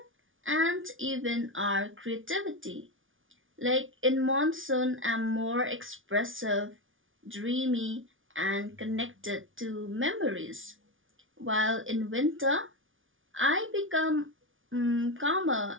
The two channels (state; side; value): late; left; 0.57 ms